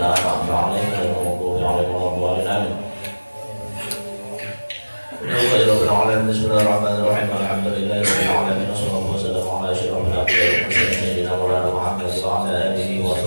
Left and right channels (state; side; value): inverted; both; correlation -1.00